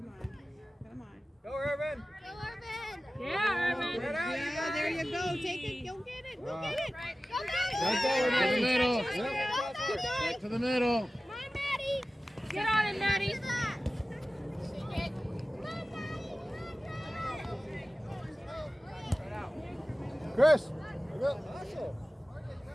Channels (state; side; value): normal; both; correlation 0.96